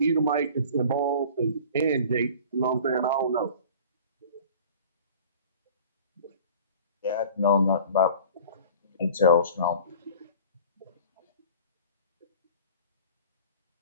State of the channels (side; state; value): both; inverted; correlation -0.44